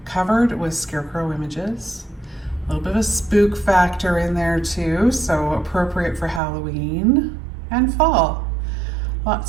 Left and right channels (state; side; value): drops out; left; at 6.4 s